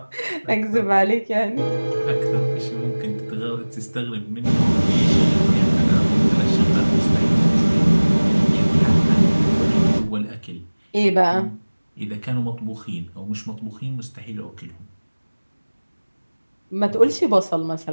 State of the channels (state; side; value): inverted; both; correlation -1.00